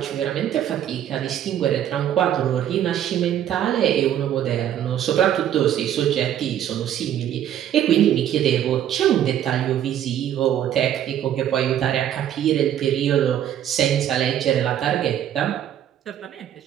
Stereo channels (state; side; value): quieter; left; 10.7 dB